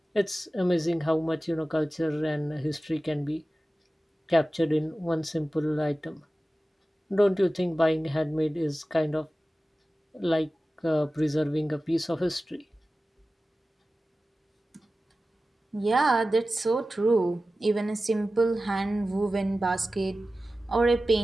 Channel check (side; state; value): both; normal; correlation 0.95